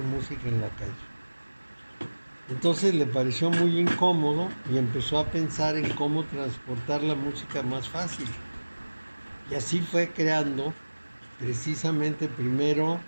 música en la calle. Entonces le pareció muy incómodo y empezó a pensar en cómo transportar la música más fácil. Y así fue creando precisamente primero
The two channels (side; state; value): both; inverted; correlation -1.00